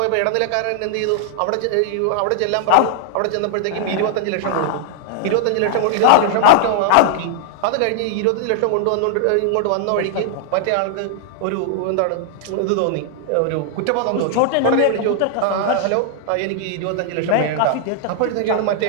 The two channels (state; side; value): different; both; correlation -0.01